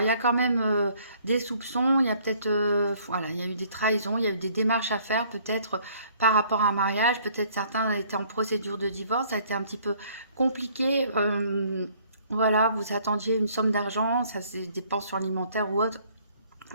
il y a quand même des soupçons. Il y a peut-être, voilà, il y a eu des trahisons. Il y a eu des démarches à faire, peut-être par rapport à un mariage. Peut-être certains étaient en procédure de divorce. Ça a été un petit peu compliqué. voilà, vous attendiez une somme d'argent, ça c'est des dépenses alimentaires ou autre,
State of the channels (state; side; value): inverted; both; correlation -0.60